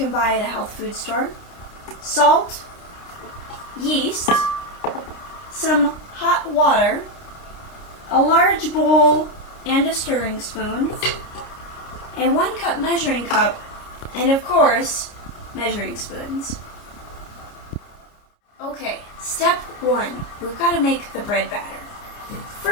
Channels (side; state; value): right; late; 29 ms